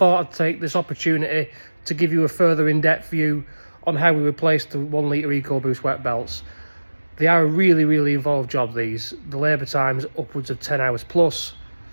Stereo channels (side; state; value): both; inverted; correlation -1.00